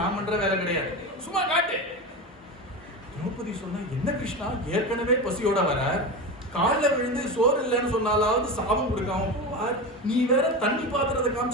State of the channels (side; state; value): both; normal; correlation 0.23